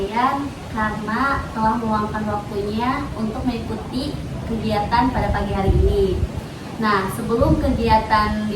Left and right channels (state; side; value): identical; both; correlation 1.00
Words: karena telah meluangkan waktunya untuk mengikuti kegiatan pada pagi hari ini. Nah, sebelum kegiatan